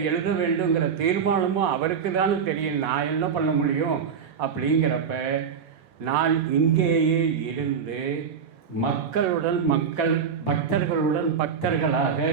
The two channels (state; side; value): quieter; left; 6.7 dB